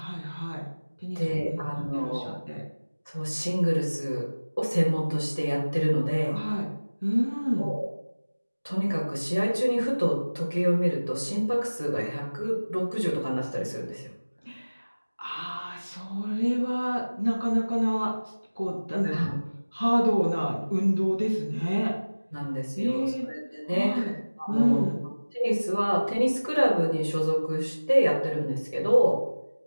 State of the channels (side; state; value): both; inverted; correlation -1.00